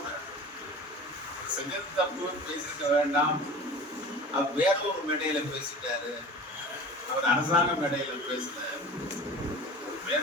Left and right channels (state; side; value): normal; both; correlation 0.38